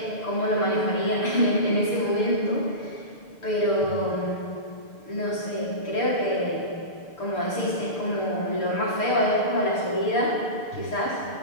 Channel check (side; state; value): right; late; 6.7 ms